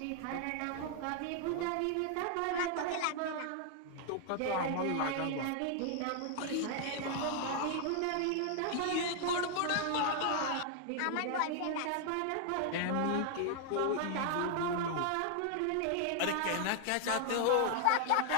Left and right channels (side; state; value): both; different; correlation 0.00